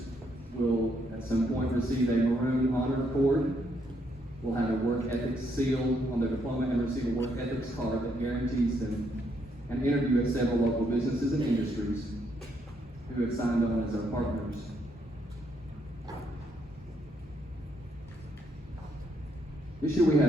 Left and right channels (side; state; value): both; normal; correlation 0.74